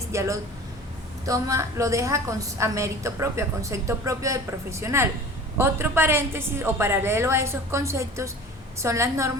ya lo deja a mérito propio, a concepto propio del profesional. Otro paréntesis o paralelo a esos conceptos son las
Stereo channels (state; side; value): normal; both; correlation 0.41